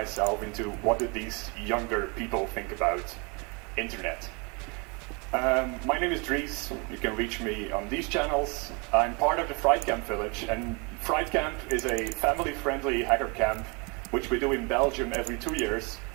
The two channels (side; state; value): left; quieter; 31.1 dB